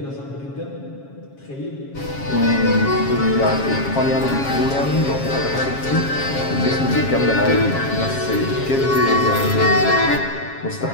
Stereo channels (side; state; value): right; late; 7.4 ms